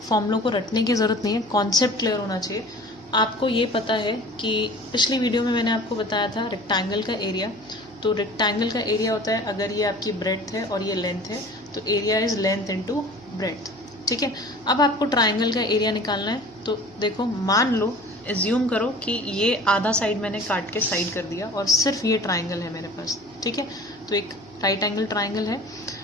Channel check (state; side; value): noise; left; hum, 28 dB below the sound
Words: फॉर्मूलों को रटने की ज़रूरत नहीं है, कॉन्सेप्ट क्लियर होना चाहिए। आपको ये पता है कि पिछली वीडियो में मैंने आपको बताया था रेक्टेंगल का एरिया। तो रेक्टेंगल का एरिया होता है, अगर ये आपकी ब्रेड्थ है और ये लेंथ है तो area is length into breadth. ठीक है, अब आपको ट्राइंगल का एरिया निकालना है। तो देखो, मान लो, एज्यूम करो कि ये आधा साइड मैंने काट के साइड कर दिया और सिर्फ ये ट्राइंगल है मेरे पास। ठीक है, तो एक राइट एंगल ट्राइंगल है।